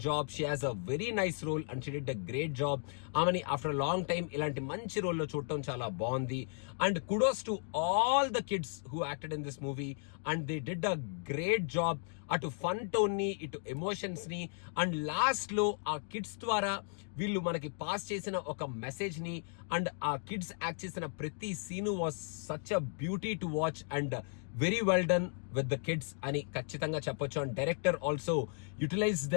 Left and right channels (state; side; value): silent; right; 54 dB below the other